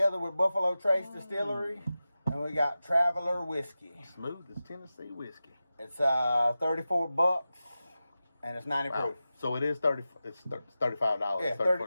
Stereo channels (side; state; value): both; inverted; correlation -0.94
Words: with Buffalo Trace Distillery, and we got Traveler Whiskey. Smooth as Tennessee whiskey. It's $34, and it's 90 proof. So it is $30. It's $35.